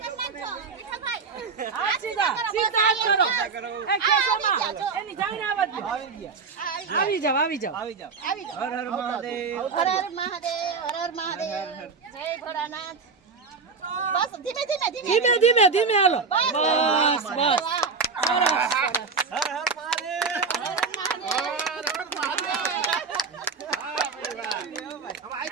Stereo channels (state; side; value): quieter; left; 4.9 dB